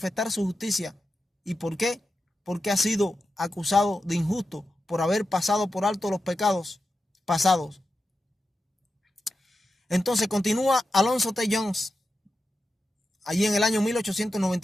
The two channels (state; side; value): normal; both; correlation 0.90